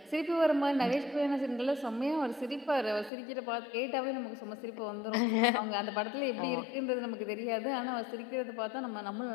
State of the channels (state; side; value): drops out; right; at 3.1 s